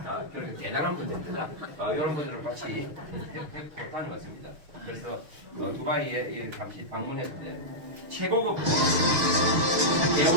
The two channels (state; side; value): late; left; 6.4 ms